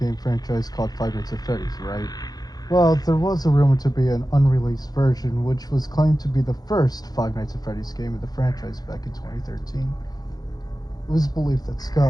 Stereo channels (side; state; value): right; late; 0.19 ms